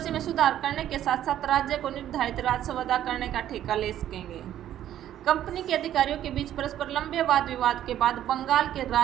में सुधार करने के साथ साथ राज्य को निर्धारित राजस्व अदा करने का ठेका ले सकेंगे। कंपनी के अधिकारियों के बीच परस्पर लंबे वाद विवाद के बाद बंगाल के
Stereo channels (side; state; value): left; quieter; 11.6 dB